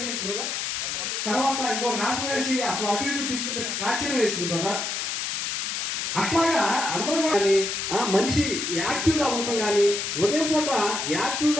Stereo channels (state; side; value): noise; left; hiss, 2 dB below the sound